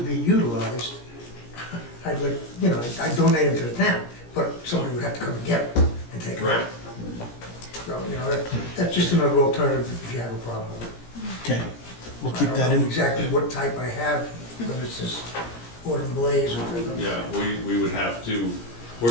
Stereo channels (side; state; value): right; late; 17 ms